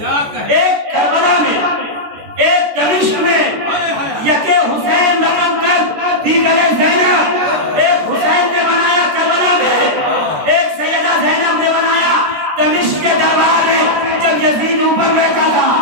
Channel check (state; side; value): late; left; 14 ms